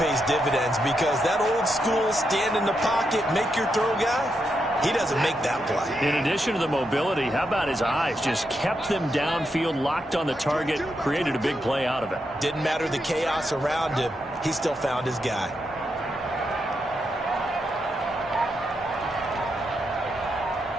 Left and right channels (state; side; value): normal; both; correlation 0.83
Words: dividends because that old school stand in the pocket, make your throw guy, he doesn't make that play. In addition to the mobility, how about his eyes? Just kept them downfield, locked on the target, created a big play out of it. Didn't matter the chaos around him. He still found his guy.